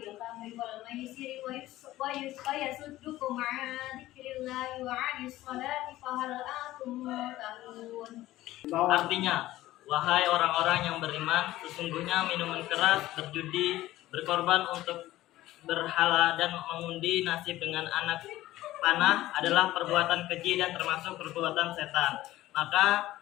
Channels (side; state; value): right; quieter; 15.8 dB